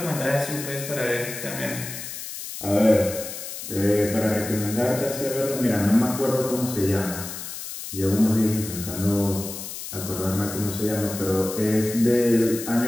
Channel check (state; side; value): noise; left; hiss, 9 dB below the sound